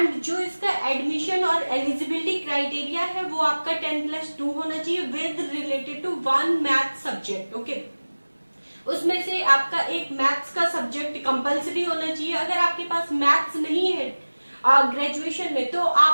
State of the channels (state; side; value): inverted; both; correlation -1.00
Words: जो इसका एडमिशन और एलिजिबिलिटी क्राइटेरिया है वो आपका 10+2 होना चाहिए with related to 1 math subject. Okay, उसमें से आपका एक मैथ्स का सब्जेक्ट कंपलसरी होना चाहिए। अगर आपके पास मैथ्स नहीं है ग्रेजुएशन में, तो